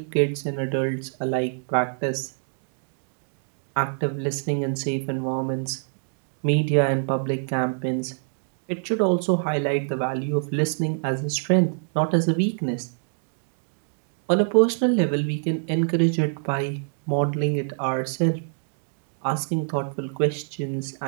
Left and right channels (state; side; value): silent; left; digital silence